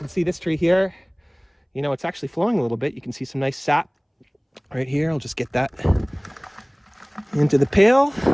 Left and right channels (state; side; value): identical; both; correlation 1.00